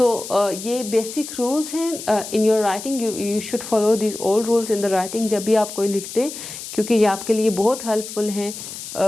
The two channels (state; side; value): noise; left; hiss, 10 dB below the sound